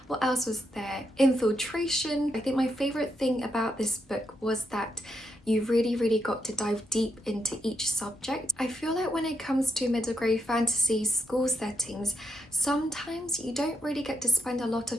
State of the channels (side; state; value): both; normal; correlation 0.82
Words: what else was there? Infiltration. I think my favourite thing about this book was that you really got to dive deep into each subject. I feel like when it comes to middle grade fantasy school settings, sometimes you don't really get to spend a lot